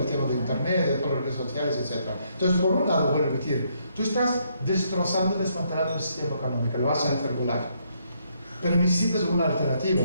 el tema de internet, de todas las redes sociales, etc. Entonces, por un lado, voy a repetir, tú estás destrozando, desmantelando el sistema económico, lo vas a hacer volar. Pero necesitas una alternativa,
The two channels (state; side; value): inverted; both; correlation -0.73